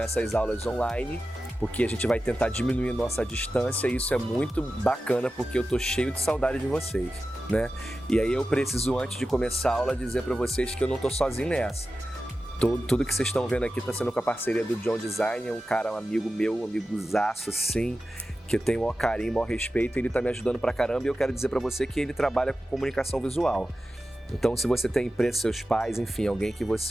aulas online, porque a gente vai tentar diminuir nossa distância e isso é muito bacana porque eu tô cheio de saudade de vocês, né? E aí eu preciso, antes de começar a aula, dizer para vocês que eu não tô sozinho nessa. Tudo que vocês estão vendo aqui está sendo com a parceria do John Design, é um cara, um amigo meu, um amigozaço assim, que eu tenho o maior carinho, o maior respeito, ele está me ajudando pra caramba e eu quero dizer para você que ele trabalha com comunicação visual. Então, se você tem empresa, seus pais, enfim, alguém que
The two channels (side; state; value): both; normal; correlation 0.93